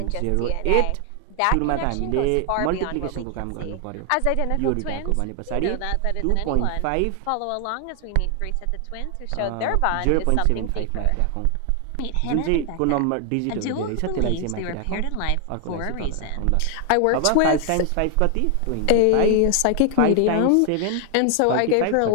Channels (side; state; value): both; different; correlation 0.00